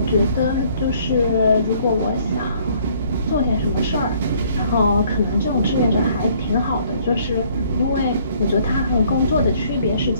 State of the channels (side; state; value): both; inverted; correlation -0.61